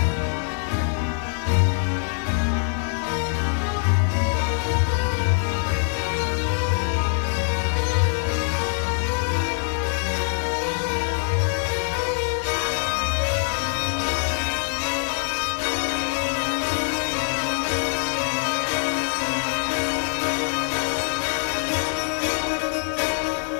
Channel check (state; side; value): silent; right; 63 dB below the other